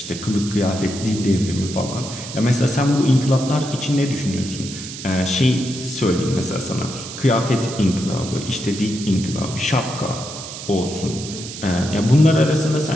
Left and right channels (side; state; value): right; noise; hiss, 11 dB below the sound